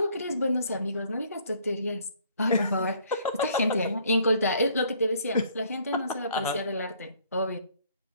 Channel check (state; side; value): inverted; both; correlation -0.61